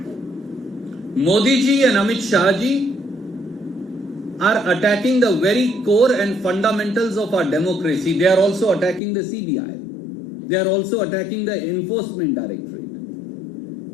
Modi ji and Amit Shah ji are attacking the very core and fundamentals of our democracy. They are also attacking the CBI. They are also attacking the Enforcement Directorate.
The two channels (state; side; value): drops out; right; at 9.0 s